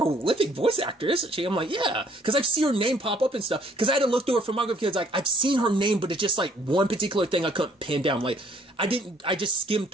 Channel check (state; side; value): normal; both; correlation 0.62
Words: voice actor, isn't she? I'm like, yeah, because I've seen her name pop up and stuff. Because I had to look through her filmography, because like, I've seen her name, but it's just like one particular thing I couldn't pin down. Like, I just skimmed